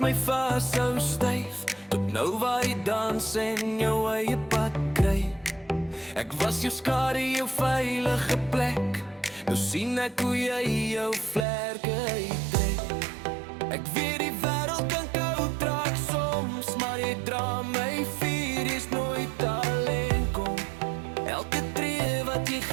vashou styf, tot nou waar jy dans en jou eie pad kry. Ek was jou skare, jou veilige plek. Nou sien ek hoe jy jou vlerke uittrek. Ek weet die wêreld kan koud raak soms, maar jy dra my vuur, jy's nooit alleen kom. Elke tree wat jy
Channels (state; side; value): drops out; left; at 11.5 s